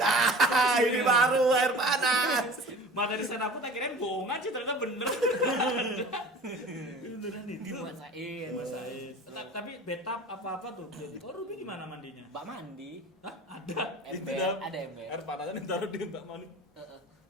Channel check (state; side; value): normal; both; correlation 0.41